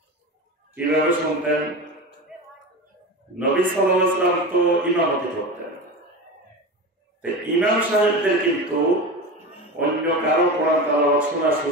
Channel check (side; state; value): both; normal; correlation 0.26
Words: কিভাবে শুনতেন? নবী সাল্লাল্লাহু আলাইহি ওয়াসাল্লাম তো ইমামতি করতেন, ইমাম সাহেবদের কিন্তু অন্য কারো কোরআন তেলাওয়াত শোনার